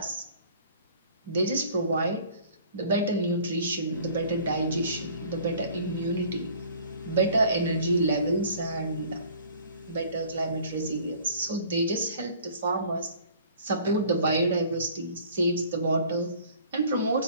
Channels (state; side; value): inverted; both; correlation -0.51